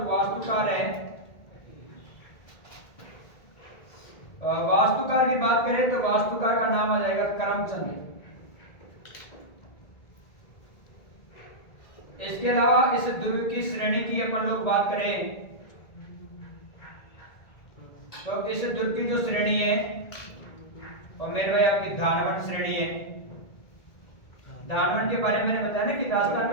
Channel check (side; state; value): right; late; 1.9 ms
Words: वास्तुकार है, वास्तुकार की बात करें तो वास्तुकार का नाम आ जाएगा करमचंद। इसके अलावा इस दुर्ग की श्रेणी की अपन लोग बात करें तो इस दुर्ग की जो श्रेणी है और मेरे भाई आपकी धानवंत श्रेणी है। धानवंत के बारे में मैंने बताया ना कि राजस्थान